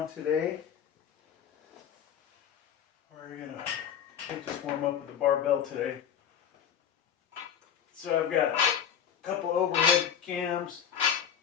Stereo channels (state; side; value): quieter; right; 8.5 dB